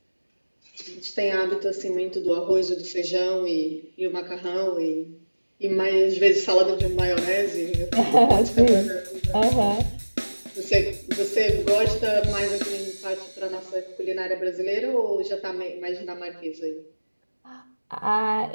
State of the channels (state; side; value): inverted; both; correlation -1.00